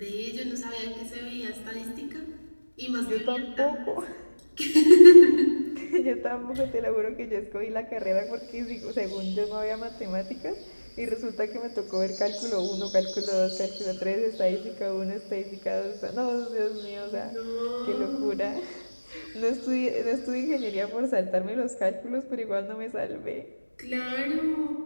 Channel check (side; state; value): both; inverted; correlation -1.00